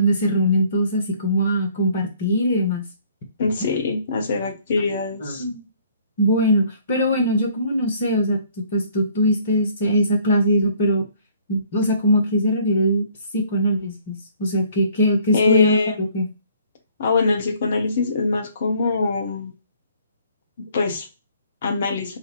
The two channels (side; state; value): both; inverted; correlation -0.59